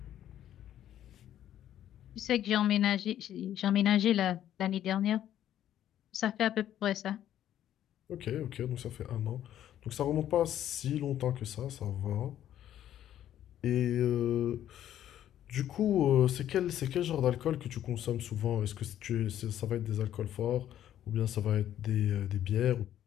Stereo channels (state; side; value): quieter; right; 11.4 dB